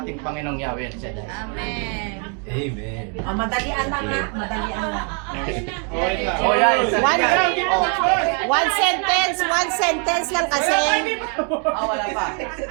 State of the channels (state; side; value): quieter; left; 39.5 dB